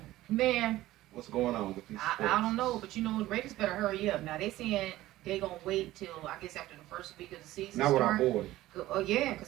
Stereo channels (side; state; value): left; quieter; 16.0 dB